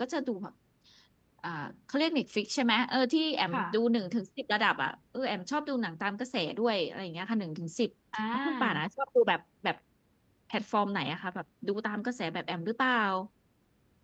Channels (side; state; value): both; identical; correlation 1.00